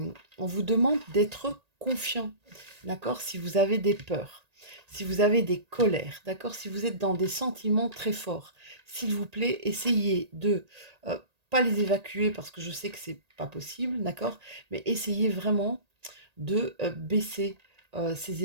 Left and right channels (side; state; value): left; late; 1.8 ms